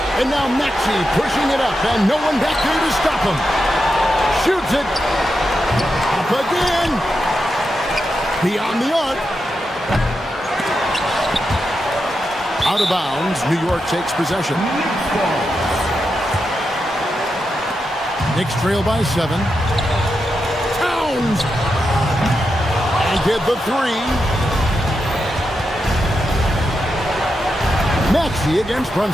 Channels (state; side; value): normal; both; correlation 0.87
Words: And now Maxey pushing it up. And no one back there to stop him. Shoots it. Up again. Beyond the arc. Out of bounds. New York takes possession. Knicks trail by 7. Towns. And get the 3. Maxey against